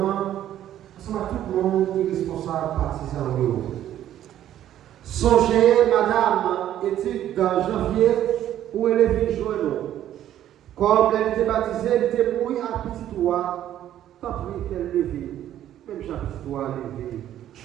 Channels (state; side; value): quieter; left; 11.7 dB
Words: C'est tout le monde qui est responsable partisan de vous. Songez, madame, étude dans janvier, où elle est venue joindre. Comme elle était baptisée, elle était mouillée à petit doigt, tant pis qu'elle levée, même j'ai petit doigt levé.